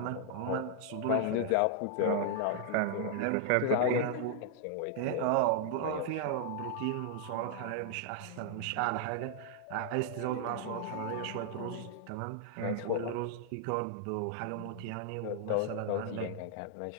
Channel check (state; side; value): different; both; correlation -0.01